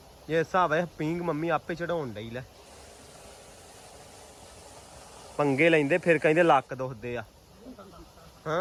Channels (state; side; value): identical; both; correlation 1.00